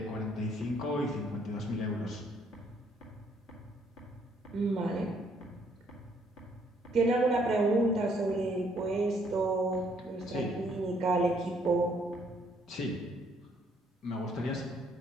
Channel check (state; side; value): normal; both; correlation 0.67